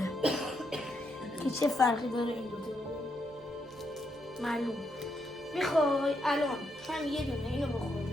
که چه فرقی داره این دوتا معلوم. میخوای الان هم یه دونه اینو بخوریم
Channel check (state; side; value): normal; both; correlation 0.79